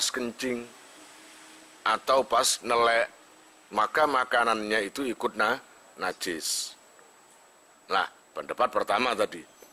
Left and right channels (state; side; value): identical; both; correlation 1.00